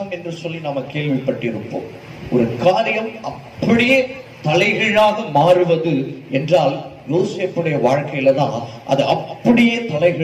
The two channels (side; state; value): both; identical; correlation 1.00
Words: என்று சொல்லி நாம கேள்விப்பட்டிருப்போம். ஒரு காரியம் அப்படியே தலைகீழாக மாறுவது என்றால் யோசேப்புடைய வாழ்க்கையில தான் அது அப்படியே